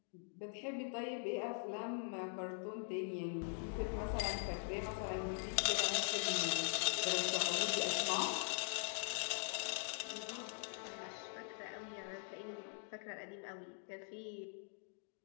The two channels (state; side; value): silent; right; digital silence